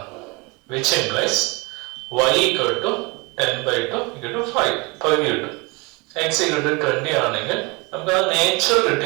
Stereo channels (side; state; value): left; quieter; 27.2 dB